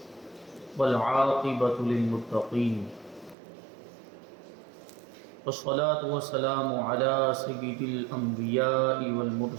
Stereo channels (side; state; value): left; drops out; at 3.4 s